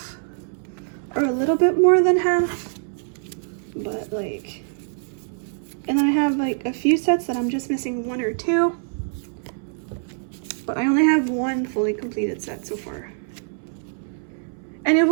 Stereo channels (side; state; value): left; silent; 63 dB below the other